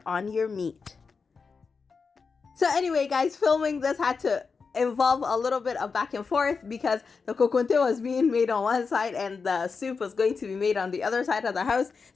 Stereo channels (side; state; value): right; quieter; 5.0 dB